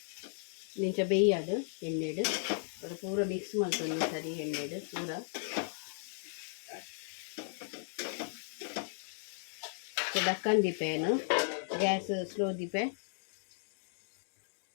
ನಿಂಚ ಬೇಯ್ಯಾಡು ಎಣ್ಣೆಡು ಅದು ಪೂರ ಮಿಕ್ಸ್ ಮಾಡ್ಕೊಂಡು ಸರಿ ಎಣ್ಣೆಡು ಪೂರ ಡಕ್ಕನ್ ದೀಪೇನು ಗ್ಯಾಸ್ ಸ್ಲೋ ದೀಪೆ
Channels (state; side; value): silent; right; digital silence